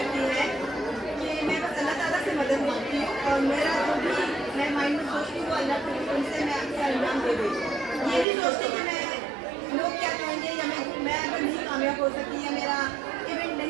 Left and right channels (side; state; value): left; drops out; at 8.2 s